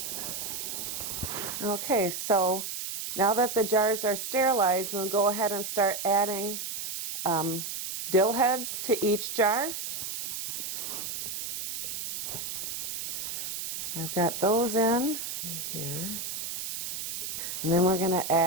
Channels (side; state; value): right; noise; hiss, 5 dB below the sound